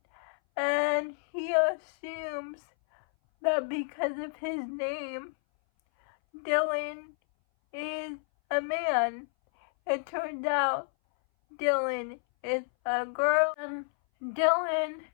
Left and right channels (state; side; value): silent; right; 58 dB below the other